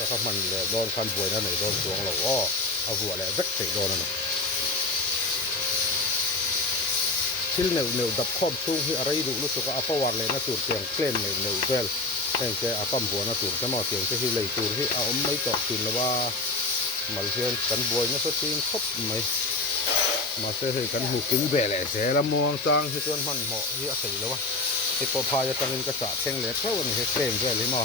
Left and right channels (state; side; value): quieter; right; 3.1 dB